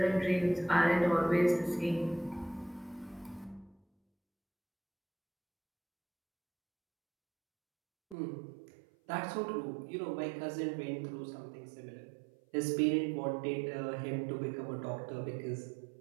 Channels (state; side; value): drops out; left; at 8.2 s